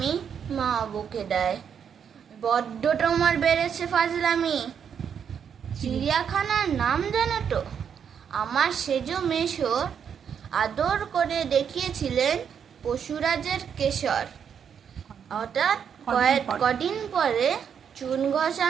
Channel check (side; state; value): left; quieter; 7.6 dB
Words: মা বকে দেয়, বড্ড তোমার বেড়েছে ফাজলামি। চিড়িয়াখানার নাম জানো তো? আমার সেজ মেশর আদর করে দেখিয়েছিলেন পশুরাজের কেশর। হঠাৎ কদিন পরে চুন